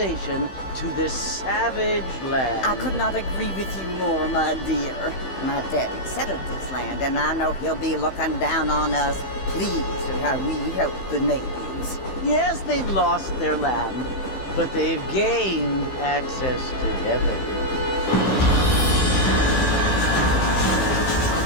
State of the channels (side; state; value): right; late; 15 ms